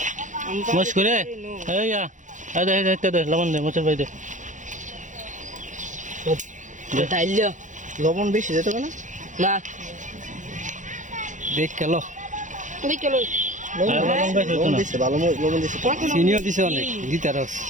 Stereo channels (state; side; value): late; left; 0.36 ms